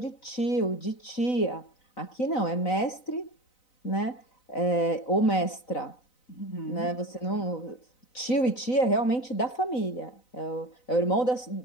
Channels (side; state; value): right; late; 4.0 ms